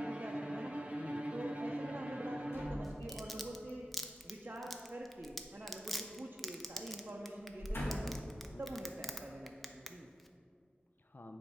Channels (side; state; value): both; normal; correlation 0.93